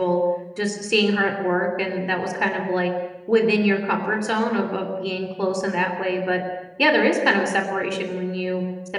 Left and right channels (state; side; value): identical; both; correlation 1.00